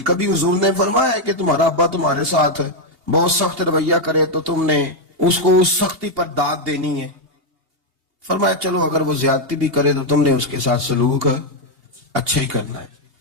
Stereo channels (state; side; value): late; left; 2.8 ms